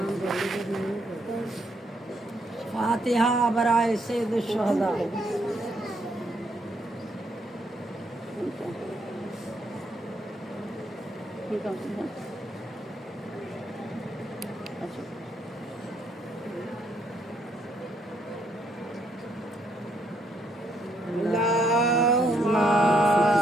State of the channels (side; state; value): both; normal; correlation 0.73